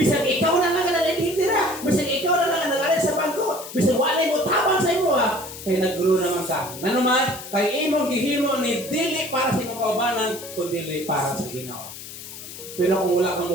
ikaw na lang ang nanitira, bisan ikaw na lang ang nag-aral sa bangko, bisan wala mo tabang sa imo ha. Kaya nag-grow naman ka. Nanuman, kay imong gihimo ni dili para sa imong kaubanan, kundi para sa Ginoo. Pero kung wala kang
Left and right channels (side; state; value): left; noise; hiss, 13 dB below the sound